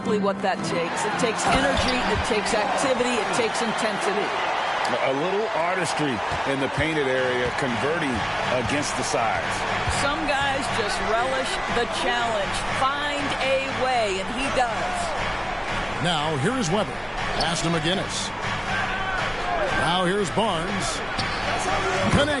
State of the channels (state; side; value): identical; both; correlation 1.00